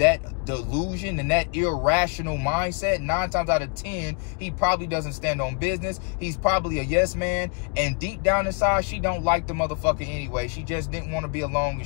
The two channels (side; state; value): right; quieter; 35.3 dB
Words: delusion and that irrational mindset, 9 times out of 10, he probably doesn't stand on business. He's probably a yes man. And deep down inside, she don't like the motherfucker anyway. She just didn't want to be alone